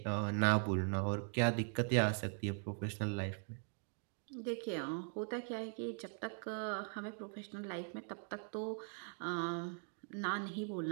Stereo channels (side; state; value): left; silent; 51 dB below the other